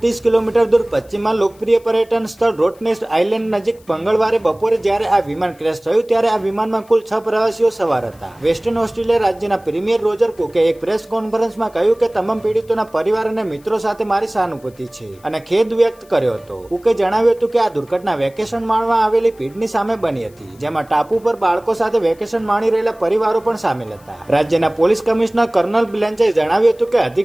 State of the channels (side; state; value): left; noise; hiss, 29 dB below the sound